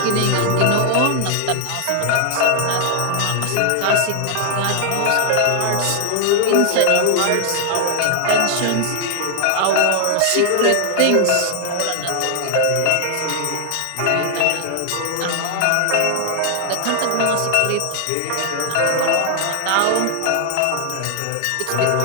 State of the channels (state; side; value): different; both; correlation 0.00